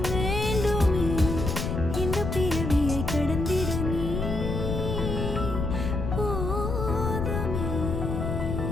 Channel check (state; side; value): noise; left; rumble, 2 dB below the sound